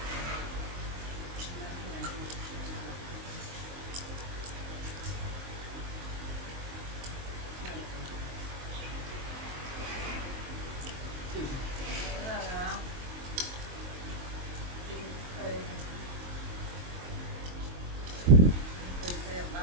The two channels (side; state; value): left; late; 23 ms